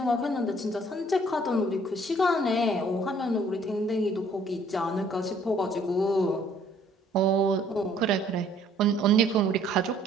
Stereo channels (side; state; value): both; normal; correlation 0.60